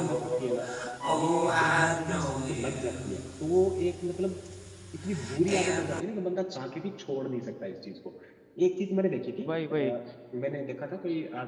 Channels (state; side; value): identical; both; correlation 1.00